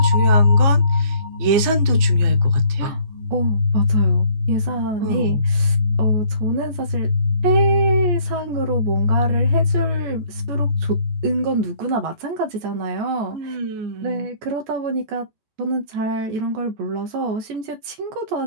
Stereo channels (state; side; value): late; left; 14 ms